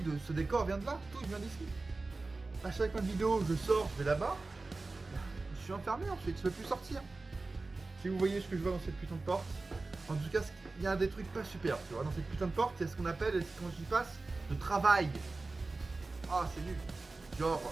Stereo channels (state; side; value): quieter; left; 3.5 dB